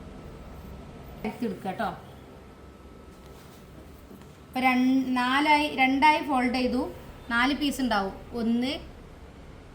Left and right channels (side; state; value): both; identical; correlation 1.00